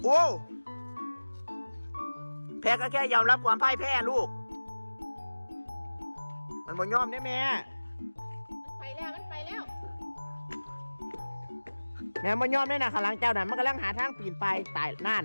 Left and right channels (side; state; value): both; inverted; correlation -1.00